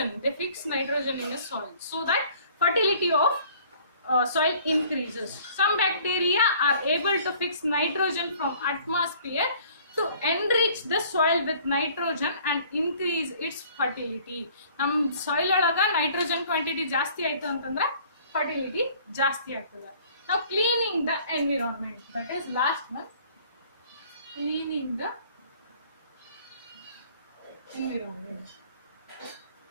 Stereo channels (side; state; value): both; inverted; correlation -0.54